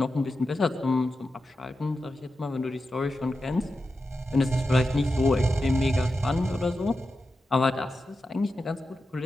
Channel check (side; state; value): both; normal; correlation 0.90